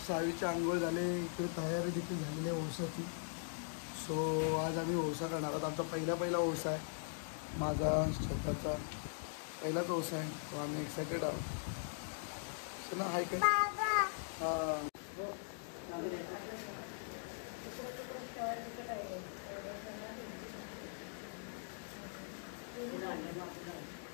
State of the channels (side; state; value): right; silent; digital silence